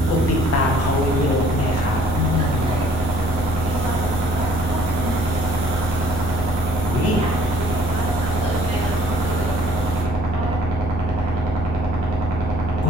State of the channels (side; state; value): both; normal; correlation 0.58